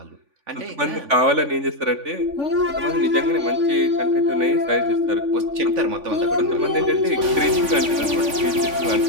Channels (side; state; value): left; late; 3.5 ms